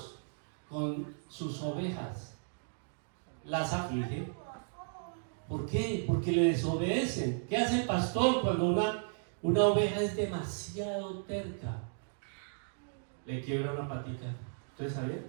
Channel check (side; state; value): left; silent; digital silence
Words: con sus ovejas? Las aflige. ¿Por qué? Porque le desobedecen. ¿Qué hace el pastor cuando una oveja es demasiado terca? Le quiebra una patica. ¿Ustedes sabían?